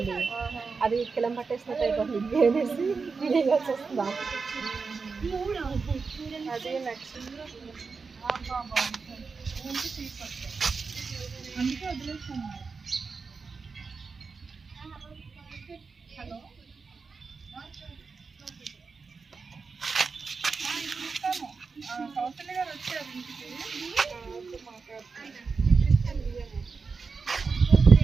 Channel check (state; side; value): quieter; left; 4.8 dB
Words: అది కిలం పట్టేసినట్టు అయిపోతుంది. ఇడ్లీ వేసి వేయాల్సి వస్తుందా? అది నెక్స్ట్ అందుకే వదిలేస్తాను. హలో, కౌశల్య గారు వచ్చారు ఇంటికి.